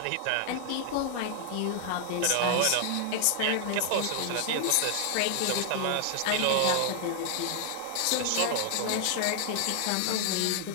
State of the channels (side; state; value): both; different; correlation 0.00